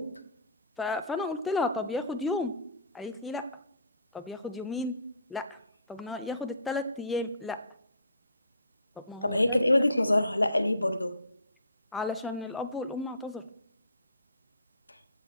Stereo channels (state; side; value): inverted; both; correlation -0.48